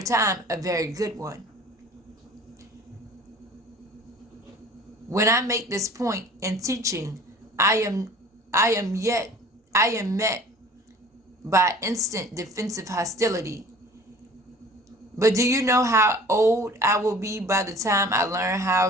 time, a very good one. When I make this point in teaching, I am met by instant defensive hostility. But do you know how old I will be by the time I learn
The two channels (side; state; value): both; normal; correlation 0.46